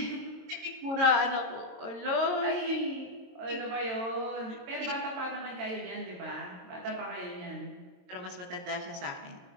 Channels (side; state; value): left; late; 22 ms